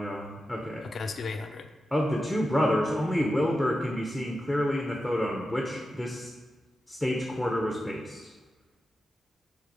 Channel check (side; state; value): both; normal; correlation 0.91